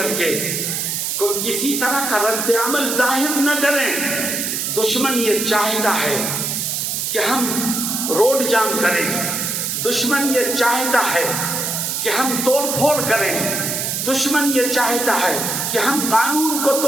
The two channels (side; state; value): right; noise; hiss, 1 dB below the sound